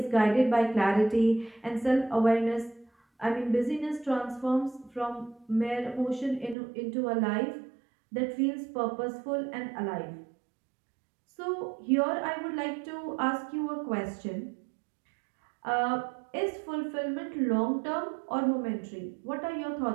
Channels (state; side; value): drops out; left; at 6.6 s